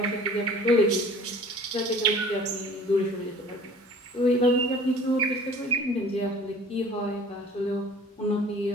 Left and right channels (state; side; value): normal; both; correlation 0.47